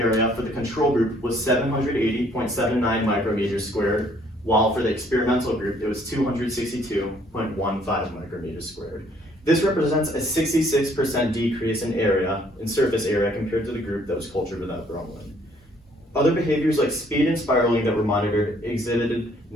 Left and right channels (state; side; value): normal; both; correlation 0.63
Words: for the control group was 780.79 micrometers squared, while for the experimental group it was 262.15 micrometers squared. This represents a 66% decrease in surface area compared to the group that was cultured without bromelain. Other behaviors like speed and spiraling that were monitored exhibited